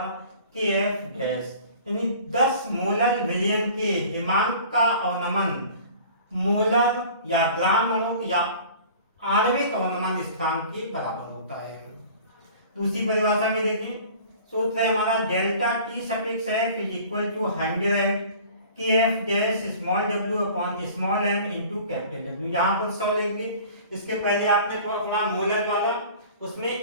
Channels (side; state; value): both; inverted; correlation -0.45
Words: के एफ डैश, यानी 10 मोलर विलयन के हिमांक का अवनमन मोलर या ग्राम अणु या आणविक अवनमन स्थिरांक के बराबर होता है। दूसरी परिभाषा में देखें, सूत्र है हमारा delta T suffix F is equal to 100 K F dash small W upon small M into capital W. यहाँ पर 100 लेंगे, इसके पहले आपने तो अपना मोलर वाला उसमें